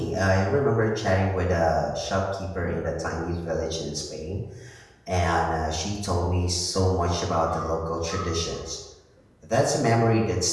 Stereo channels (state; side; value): identical; both; correlation 1.00